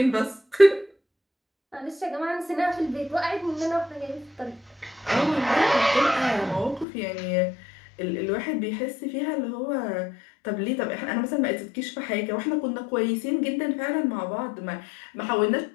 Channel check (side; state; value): right; drops out; at 6.9 s